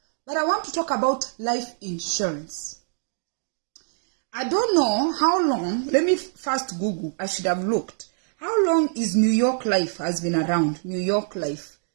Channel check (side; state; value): left; silent; digital silence